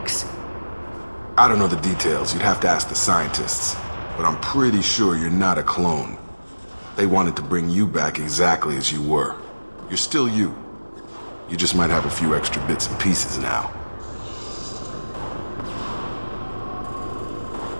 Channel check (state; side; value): inverted; both; correlation -1.00